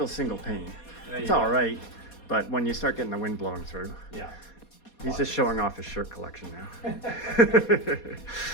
single pane. It's all right, but when you start getting the wind blowing through, yeah. He's just showing off his shirt collection now.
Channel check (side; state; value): right; late; 4.2 ms